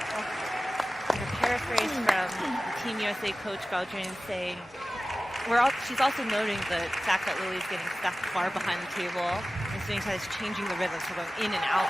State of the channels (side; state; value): both; normal; correlation 0.96